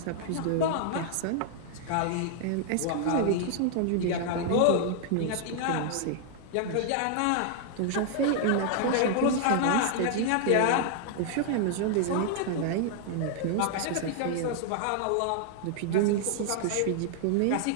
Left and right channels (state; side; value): different; both; correlation 0.00